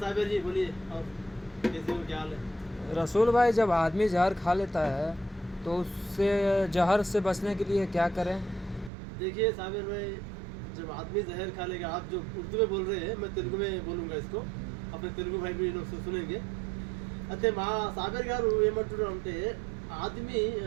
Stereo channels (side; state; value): left; drops out; at 8.9 s